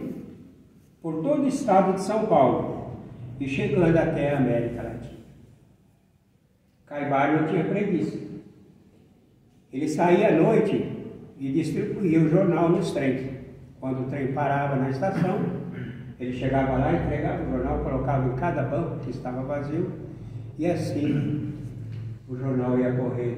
por todo o estado de São Paulo e chegando até a América Latina. Caibá não tinha preguiça. Ele saía à noite e distribuía o jornal nos trens. Quando o trem parava na estação, ele chegava lá, entregava o jornal, colocava em cada banco que estava vazio, e assim o jornal ia correr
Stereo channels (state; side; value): identical; both; correlation 1.00